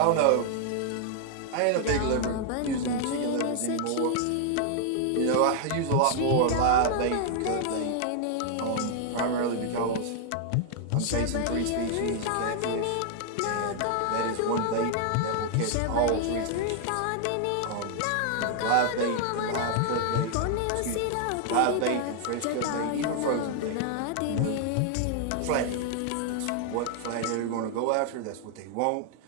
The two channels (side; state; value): both; different; correlation 0.00